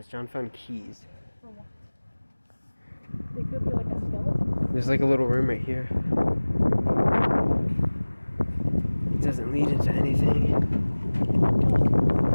John found keys. For what? They could be like a skeleton. There's like a little room right here. It doesn't lead into anything.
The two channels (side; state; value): both; inverted; correlation -1.00